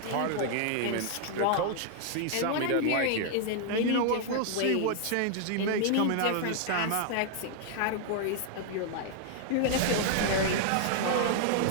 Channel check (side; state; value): both; different; correlation 0.00